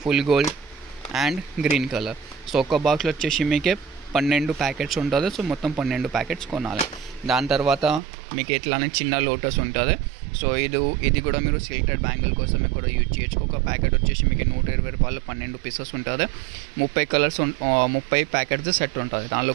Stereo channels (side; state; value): left; drops out; at 8.0 s